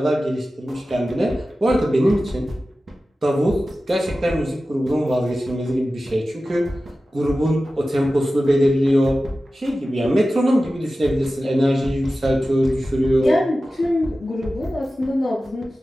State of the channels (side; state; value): both; normal; correlation 0.95